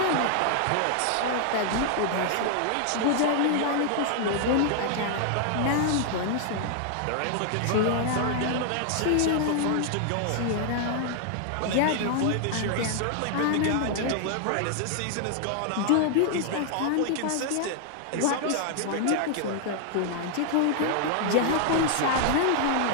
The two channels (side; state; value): both; different; correlation 0.00